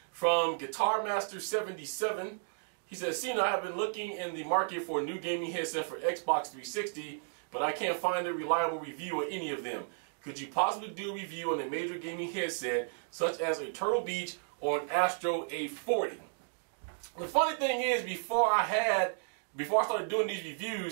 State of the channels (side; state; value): left; silent; digital silence